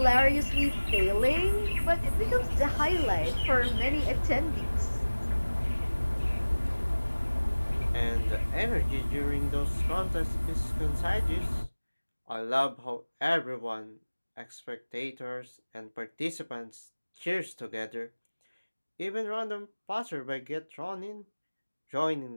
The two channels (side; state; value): both; inverted; correlation -1.00